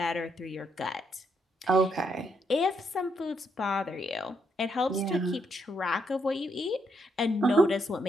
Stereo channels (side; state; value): both; normal; correlation 0.76